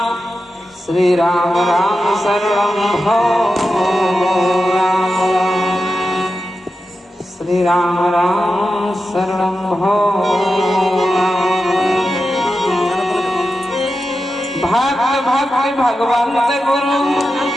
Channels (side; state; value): both; normal; correlation 0.91